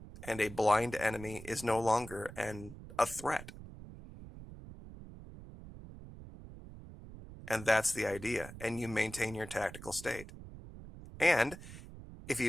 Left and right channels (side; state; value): right; noise; rumble, 14 dB below the sound